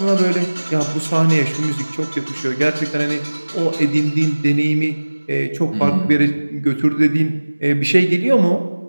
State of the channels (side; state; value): both; inverted; correlation -1.00